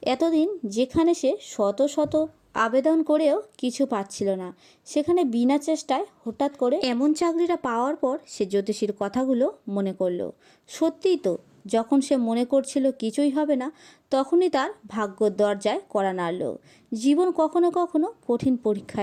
এতদিন যেখানে সে শত শত আবেদন করেও কিছু পাচ্ছিল না, সেখানে বিনা চেষ্টায় হঠাৎ করে এমন চাকরিটা পাওয়ার পর সে জ্যোতিষীর কথাগুলো মনে করলো। সত্যিই তো, যখন সে মনে করছিল কিছুই হবে না, তখনই তার ভাগ্যর দরজায় কড়া নাড়ল। জীবন কখনো কখনো কঠিন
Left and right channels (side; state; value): both; identical; correlation 1.00